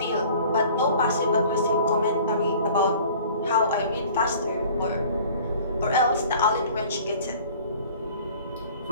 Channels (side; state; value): both; inverted; correlation -0.48